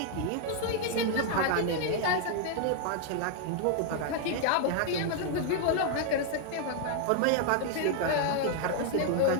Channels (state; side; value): different; both; correlation 0.00